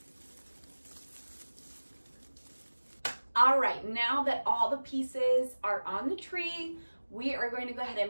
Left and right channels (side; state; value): both; inverted; correlation -1.00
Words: All right, now that all the pieces are on the tree, we are going to go ahead